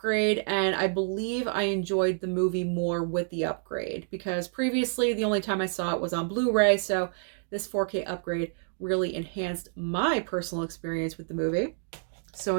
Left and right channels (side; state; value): left; silent; digital silence